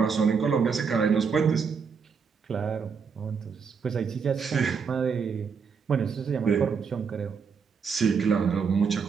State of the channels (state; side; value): quieter; left; 5.9 dB